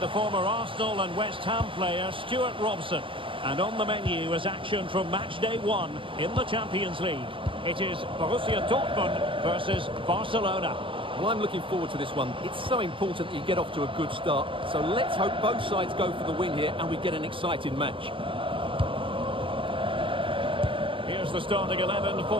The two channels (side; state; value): left; late; 0.25 ms